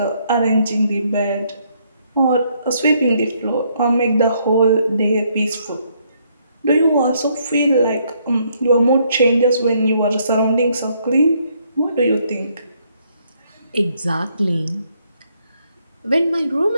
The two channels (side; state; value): both; inverted; correlation -0.71